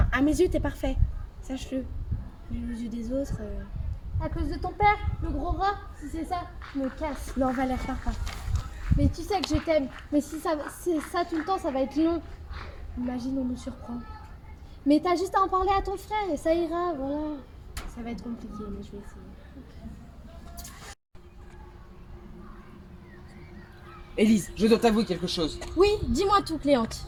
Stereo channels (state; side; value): identical; both; correlation 1.00